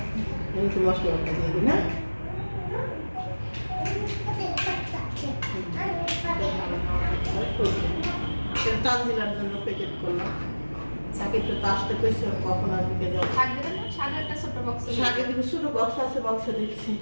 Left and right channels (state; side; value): inverted; both; correlation -1.00